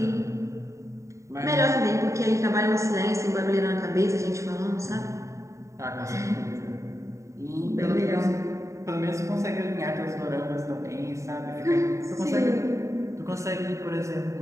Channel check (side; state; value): left; late; 0.14 ms